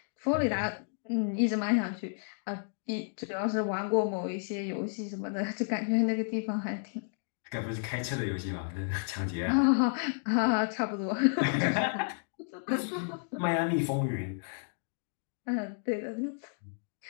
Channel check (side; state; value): right; silent; digital silence